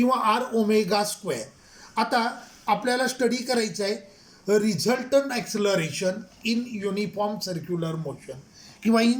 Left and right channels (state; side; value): identical; both; correlation 1.00